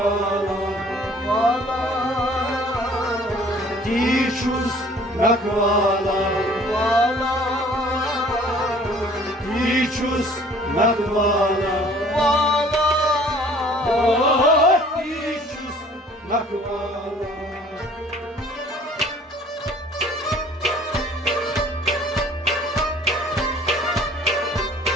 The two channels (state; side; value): normal; both; correlation 0.53